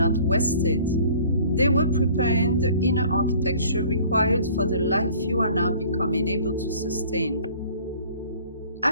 wasted. They were preparing the inner architecture required for the life you are now becoming able to sustain.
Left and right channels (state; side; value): inverted; both; correlation -0.51